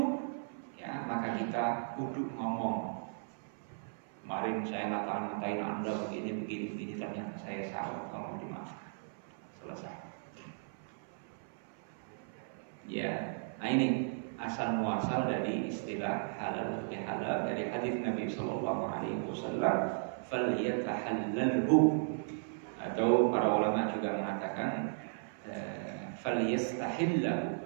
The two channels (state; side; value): silent; left; 54 dB below the other